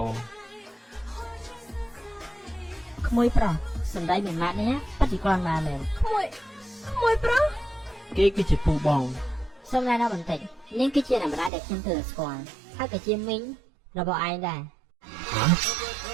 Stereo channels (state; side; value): drops out; left; at 11.5 s